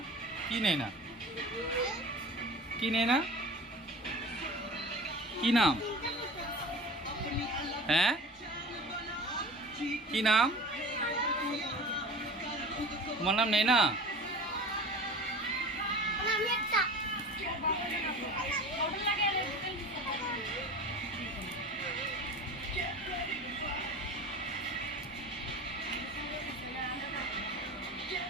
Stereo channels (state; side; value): normal; both; correlation 0.36